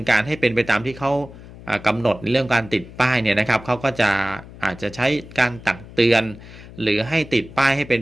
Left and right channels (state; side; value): noise; left; hum, 17 dB below the sound